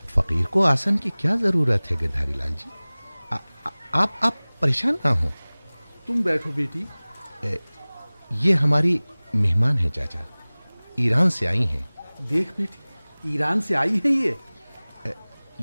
फकीर को आसन की क्या जरूरत है गिरधारी लाल जी? आप परेशान ना हो। तुम बैठो बेटी। ये हमारी मेहमान है चाचा, ईरान से आई हैं। देख बेटी, ईरान से आई है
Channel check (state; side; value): inverted; both; correlation -1.00